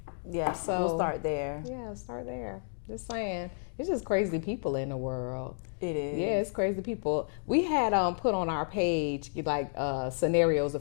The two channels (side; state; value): right; silent; digital silence